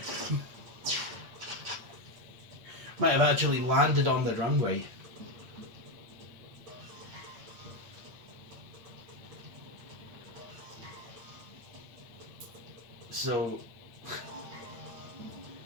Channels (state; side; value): late; left; 8.7 ms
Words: Might have actually landed on the runway. So